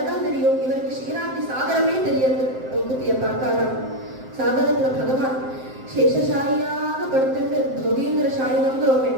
தான் தெரியும், இவருக்கு ஷீராப்தி சாகரமே தெரியாது. மூக்குத்திய பார்த்தாராம். சாகரத்துல பகவான் சேஷசாயியாக படுத்துட்டு போகேந்திர சாயினம்ங்கிறோமே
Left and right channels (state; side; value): late; left; 7.7 ms